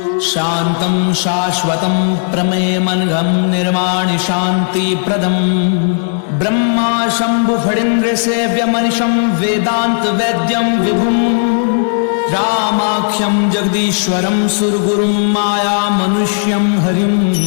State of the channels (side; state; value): right; silent; digital silence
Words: शांतं शाश्वतं प्रमेयमनघं निर्वाणि शांति प्रदम ब्रह्मा शंभु फणीन्द्र सेव्यमनिशं वेदांत वैद्यं विभुं रामाख्यं जगदीश्वरं सुरगुरुं माया मनुष्यं हरिं